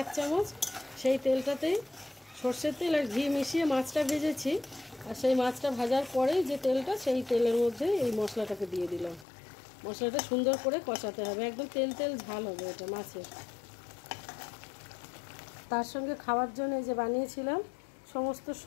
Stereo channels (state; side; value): drops out; right; at 9.2 s